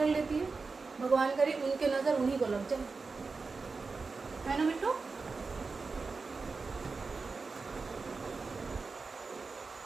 लेती है। भगवान करे उनके नज़र उन्हीं को लग जाए, है ना बिट्टू।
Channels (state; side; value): quieter; left; 4.3 dB